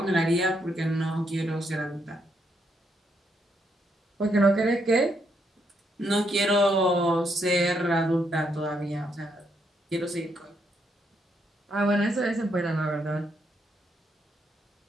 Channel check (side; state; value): both; normal; correlation 0.76